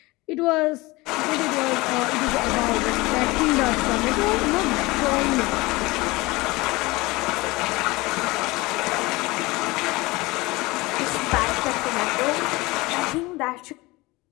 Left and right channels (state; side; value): quieter; right; 22.1 dB